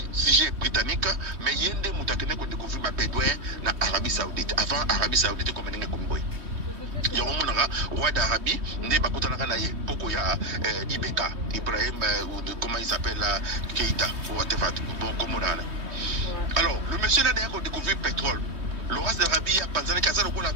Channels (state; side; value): late; left; 3.2 ms